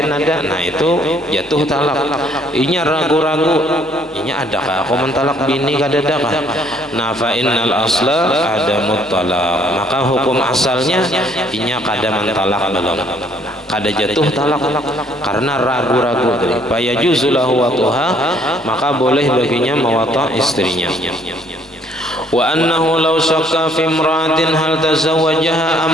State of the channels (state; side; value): normal; both; correlation 0.63